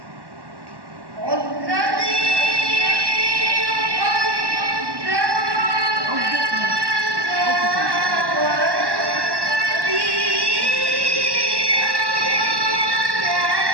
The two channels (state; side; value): late; left; 1.1 ms